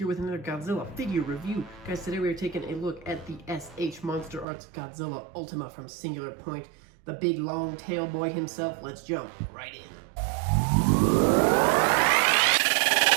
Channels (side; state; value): left; drops out; at 4.5 s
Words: with another Godzilla figure review. Guys, today we are taking a look at the MonsterArts Godzilla Ultima from Singular Point. The big long tail boy himself. Let's jump right in.